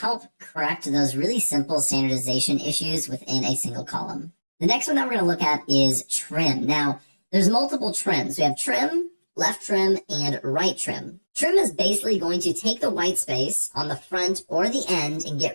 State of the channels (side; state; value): both; inverted; correlation -1.00